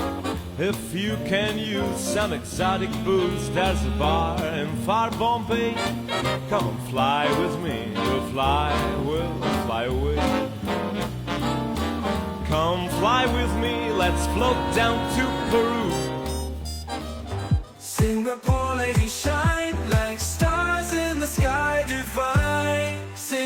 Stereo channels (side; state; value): both; identical; correlation 1.00